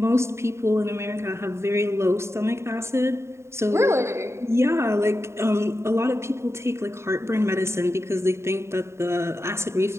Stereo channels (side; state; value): left; late; 0.13 ms